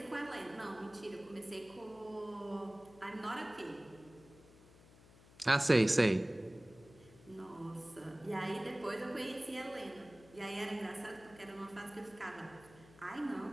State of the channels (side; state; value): left; noise; hum, 23 dB below the sound